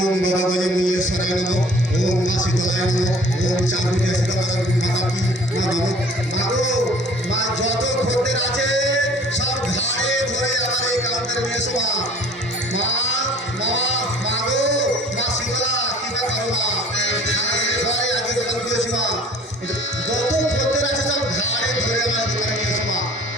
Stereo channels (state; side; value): normal; both; correlation 0.49